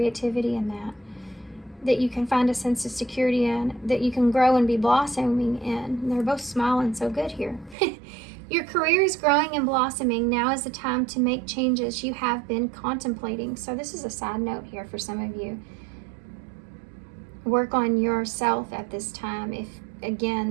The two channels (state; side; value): drops out; left; at 7.8 s